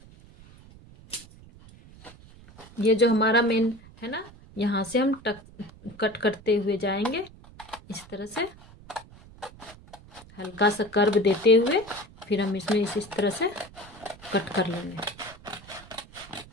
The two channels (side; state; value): right; noise; rumble, 21 dB below the sound